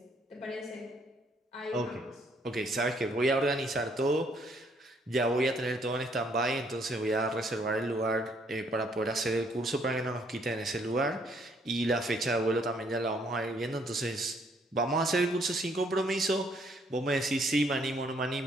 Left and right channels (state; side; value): normal; both; correlation 0.67